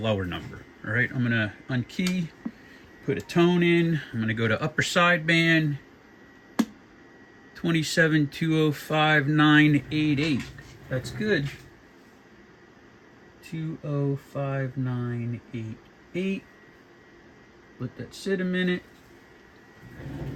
number. All right. I'm gonna unkey, put a tone in. I'm gonna go to upper sideband. 27205.988. That's good. 205.988. Let that sit a minute.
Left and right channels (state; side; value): identical; both; correlation 1.00